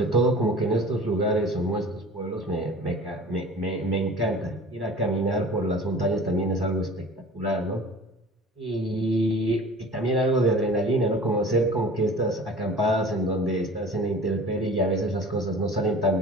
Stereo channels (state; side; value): normal; both; correlation 0.42